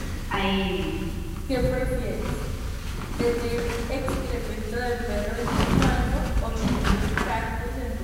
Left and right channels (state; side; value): identical; both; correlation 1.00